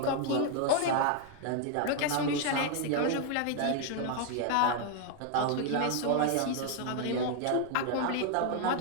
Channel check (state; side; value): different; both; correlation 0.00